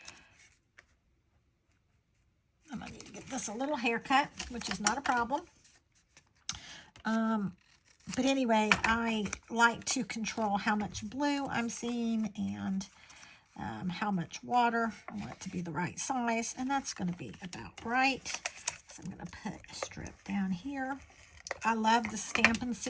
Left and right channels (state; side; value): identical; both; correlation 1.00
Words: I'm gonna need to get this a little haircut, which is not a problem. But anyway, I like to control how much blue I'm seeing and how much water. I want it to be the right size, and that's going to be about right. So I'm going to put a strip down here. I love the Stampin'